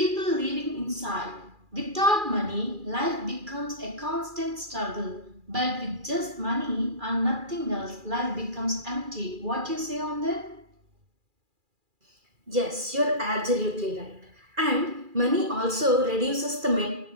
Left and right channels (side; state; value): left; late; 2.4 ms